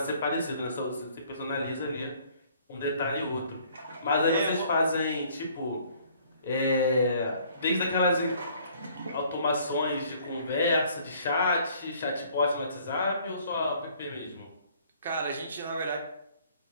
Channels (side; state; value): both; inverted; correlation -0.59